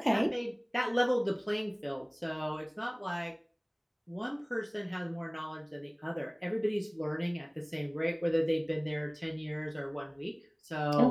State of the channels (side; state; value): both; identical; correlation 1.00